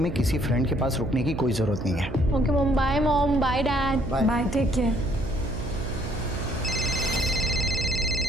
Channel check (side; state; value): right; noise; hum, 8 dB below the sound